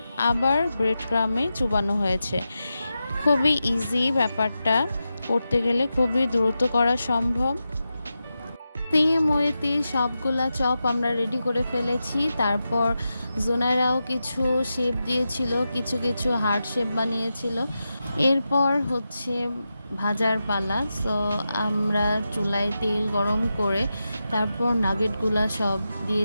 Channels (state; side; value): inverted; both; correlation -0.90